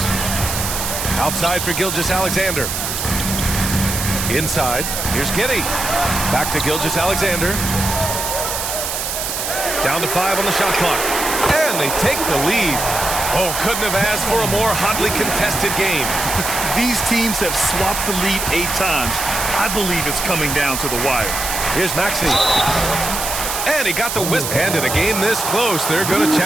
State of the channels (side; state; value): right; noise; hiss, 3 dB below the sound